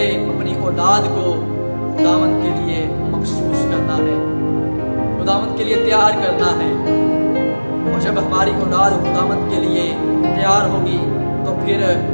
اپنی اولاد کو خداوند کے لیے مخصوص کرنا ہے، خداوند کے لیے تیار کرنا ہے۔ اور جب ہماری اولاد خداوند کے لیے تیار ہوگی تو پھر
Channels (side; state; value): both; inverted; correlation -1.00